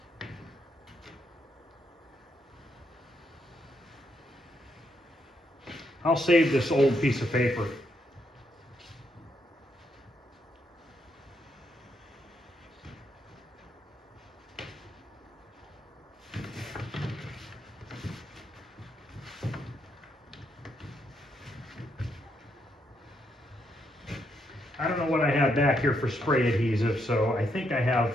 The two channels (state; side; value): normal; both; correlation 0.78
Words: I'll save this old piece of paper. I don't know what I have back here for spray adhesive, so I think I